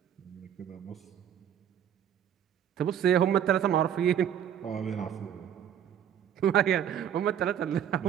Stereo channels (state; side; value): quieter; left; 9.5 dB